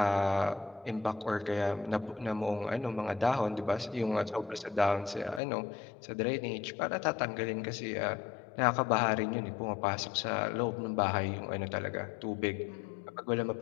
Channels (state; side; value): drops out; right; at 5.4 s